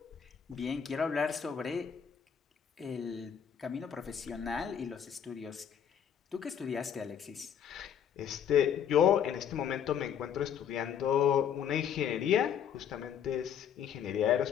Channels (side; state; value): right; quieter; 8.5 dB